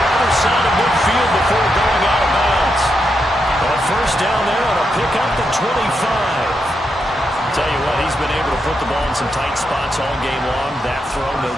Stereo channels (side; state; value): both; normal; correlation 0.83